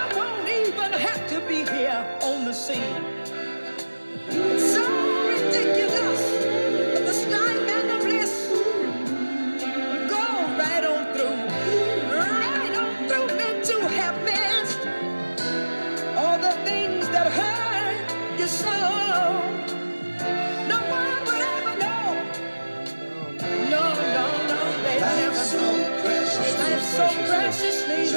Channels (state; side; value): inverted; both; correlation -1.00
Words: won't even have to be here on the scene. It's so ridiculous, but the strife and the bliss go right on through me to have missed all the things that hurt you so. No one would ever know. No, they never know. Life's so preciously